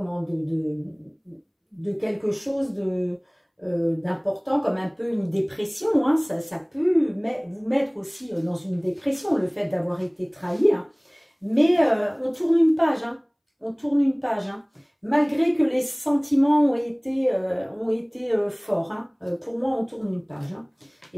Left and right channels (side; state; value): both; identical; correlation 1.00